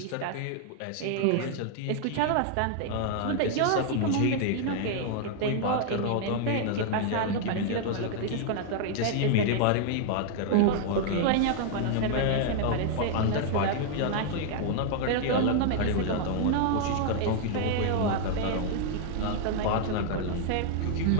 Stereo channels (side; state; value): both; different; correlation 0.00